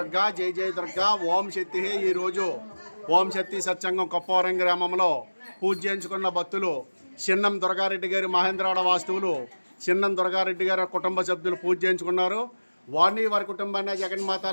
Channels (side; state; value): both; inverted; correlation -1.00